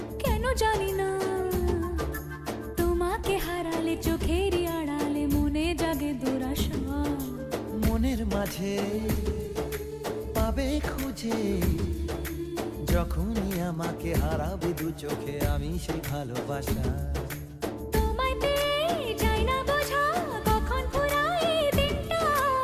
কেন জানি না, তোমাকে হারালে চোখেরই আড়ালে মনে জাগে দুরাশা। মনের মাঝে পাবে খুঁজে, যখনই আমাকে হারাবে দু চোখে আমি সেই ভালোবাসা। তোমায় পেয়ে যাই না বোঝা কখন ফুরায় দিনটা।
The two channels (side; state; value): both; identical; correlation 1.00